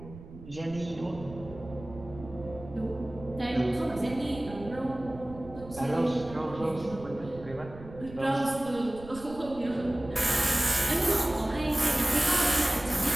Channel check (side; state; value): right; noise; rumble, 16 dB below the sound